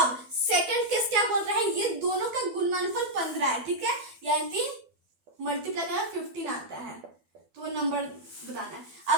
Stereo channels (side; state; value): left; late; 12 ms